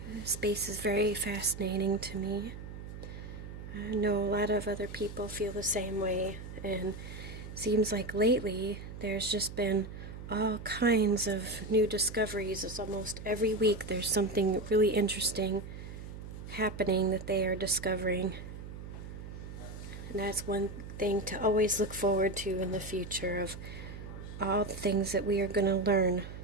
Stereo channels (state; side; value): noise; right; hum, 11 dB below the sound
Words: Space is very fascinating to me. I know a lot of other people feel the same way, and seems like lately there's just been all kinds of new discoveries. It's almost every week there's something really interesting happening that they are discovering. And that's one thing to always look forward to in the future, of all the things that we are going to learn.